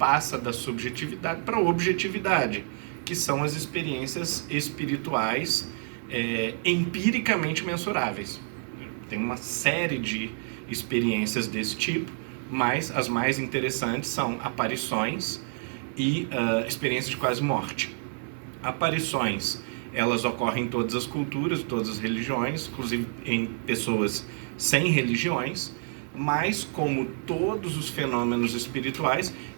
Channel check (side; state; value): left; silent; 59 dB below the other